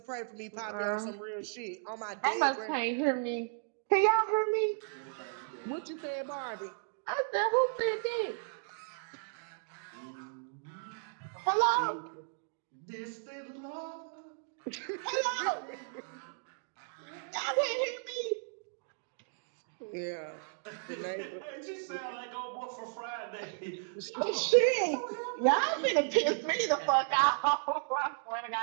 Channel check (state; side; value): silent; left; digital silence